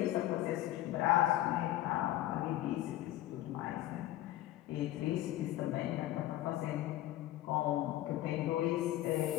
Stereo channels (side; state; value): right; quieter; 14.5 dB